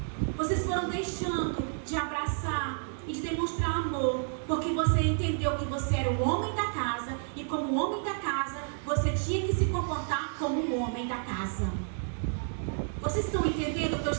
vocês foram deixando de abraçar e de demonstrar amor, porque você entendeu que você era o homem da casa, e como homem da casa, você tinha que se comportar como o homem da casa. Vocês estão entendendo o que eu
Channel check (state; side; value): silent; left; 57 dB below the other